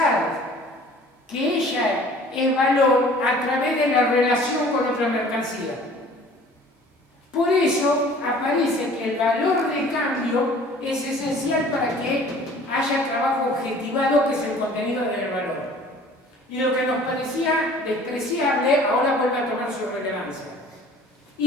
que ella es valor a través de la relación con otra mercancía. Por eso aparece que el valor de cambio es esencial para que haya trabajo objetivado, que es el contenido del valor. Y lo que nos parecía despreciable ahora vuelve a tomar su relevancia.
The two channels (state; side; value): normal; both; correlation 0.49